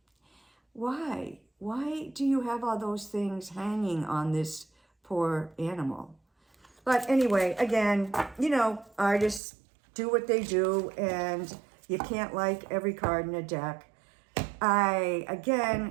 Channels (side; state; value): left; drops out; at 9.4 s